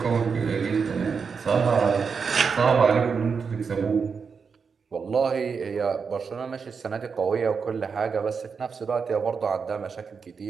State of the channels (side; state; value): left; quieter; 5.7 dB